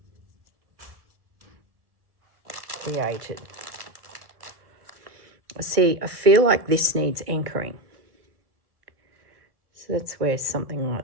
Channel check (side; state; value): left; late; 1.6 ms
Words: created. See, I feel like this needs anchoring. So that's where something